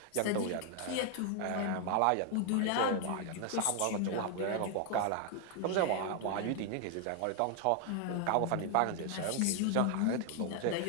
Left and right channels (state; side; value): different; both; correlation 0.00